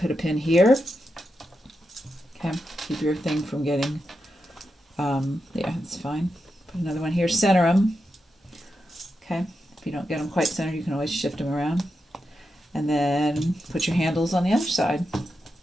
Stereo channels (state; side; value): normal; both; correlation 0.87